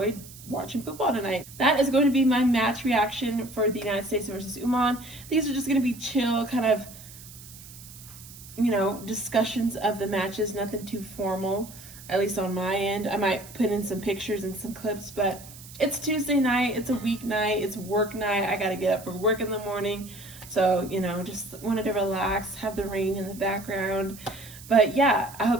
watching football tonight. That is going to be my match reaction for the United States versus Oman. These are just going to be chill, kind of you know, discussions of the matches, nothing too formal, at least on my end. I might put in some pictures and some clips, but it's Tuesday night, it's a weeknight, it's work night. I gotta get up for work in the morning. So, you know, just wanted to relax, have the rain in the background. But yeah, I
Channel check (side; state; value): right; noise; hiss, 17 dB below the sound